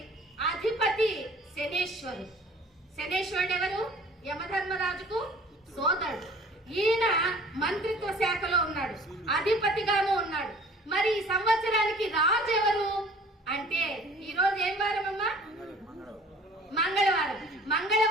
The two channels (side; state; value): both; normal; correlation 0.50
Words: అధిపతి శనేశ్వరుడు. శనేశ్వరుడు ఎవరు? యమధర్మరాజుకు సోదరుడు. ఈయన మంత్రిత్వ శాఖలో ఉన్నాడు, అధిపతిగాను ఉన్నాడు. మరి ఈ సంవత్సరానికి రాజు ఎవరు అంటే, ఈ రోజు ఏం వారం అమ్మా? మంగళవారం.